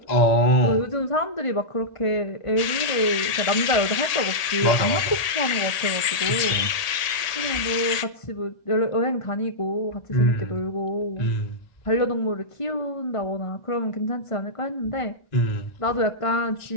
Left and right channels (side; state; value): right; late; 1.8 ms